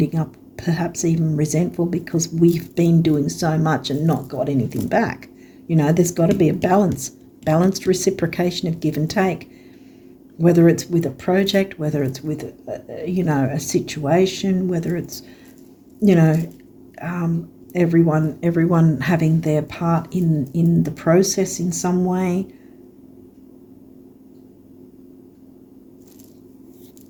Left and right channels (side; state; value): both; identical; correlation 1.00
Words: up perhaps even resentful because we've been doing so much and not got anything back. There's got to be a balanced reciprocation of give and take, whether it's with a project, whether it's with a situation, whether it's everyone having their part in the process in some way.